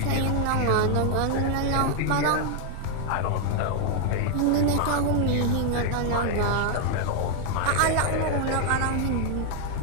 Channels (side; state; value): both; different; correlation 0.00